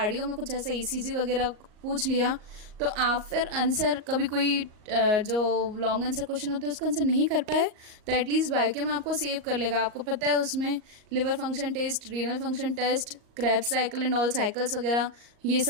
में कुछ ऐसा ईसीजी वगैरह पूछ लिया, तो आप फिर आंसर कभी कोई जो लॉन्ग आंसर क्वेश्चन होते हैं उसका आंसर नहीं कर पाए, तो एटलीस्ट बायोकेम आपको सेव कर लेगा. आपको पता है उसमें liver function test, renal function test, Krebs cycle and all cycles वगैरह ये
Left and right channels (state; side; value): late; left; 38 ms